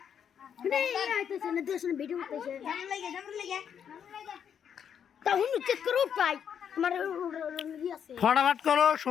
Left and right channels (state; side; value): quieter; right; 8.2 dB